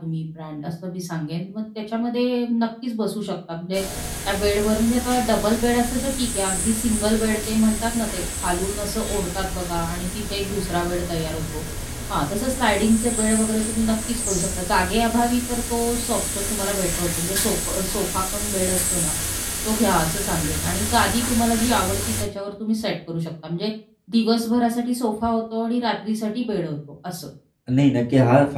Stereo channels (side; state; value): both; identical; correlation 1.00